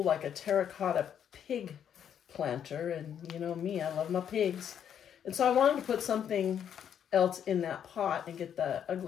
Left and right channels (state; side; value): quieter; right; 8.9 dB